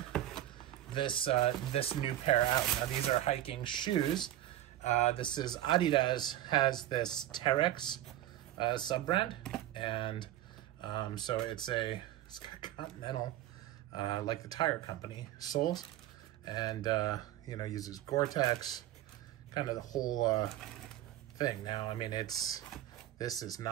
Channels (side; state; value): left; quieter; 13.4 dB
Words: this new pair out. Now these are hiking shoes. This is Adidas has this Terra sub-brand, and so it's got Continental, like the tire company, soles, and uses Gore-Tex, kind of the whole thing. Now, I mean, this is